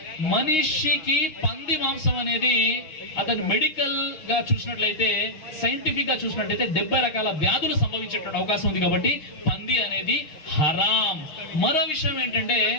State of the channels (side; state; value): right; late; 6.4 ms